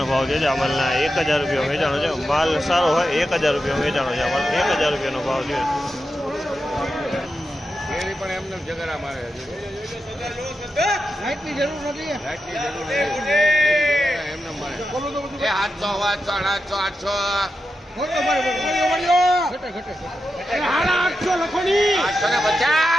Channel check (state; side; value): normal; both; correlation 0.89